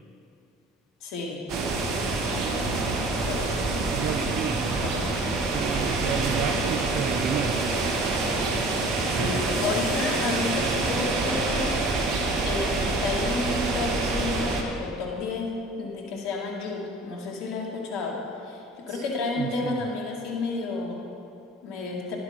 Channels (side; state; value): both; normal; correlation 0.45